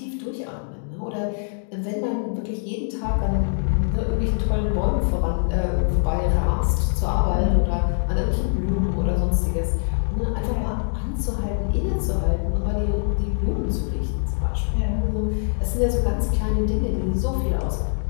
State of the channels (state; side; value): silent; right; digital silence